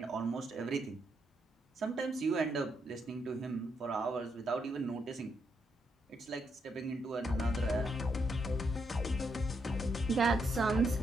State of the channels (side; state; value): both; normal; correlation 0.79